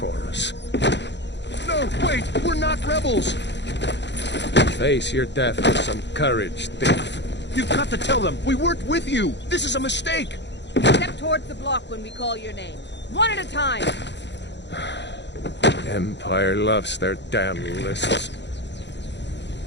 us. No, wait! We're not rebels! Face your death with some courage, thief. You've got to tell them! We weren't with you! This is a mistake! Step towards the block when we call your name. One at a time. Empire loves their damn lists.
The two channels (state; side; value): late; right; 0.51 ms